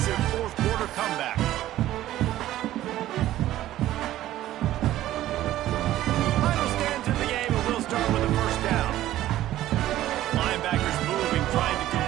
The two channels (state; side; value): quieter; left; 14.1 dB